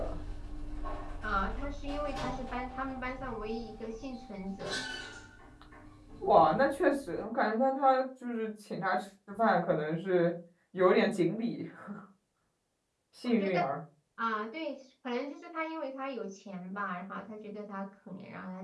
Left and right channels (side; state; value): both; identical; correlation 1.00